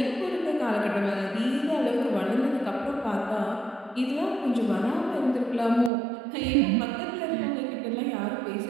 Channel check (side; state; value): left; drops out; at 5.9 s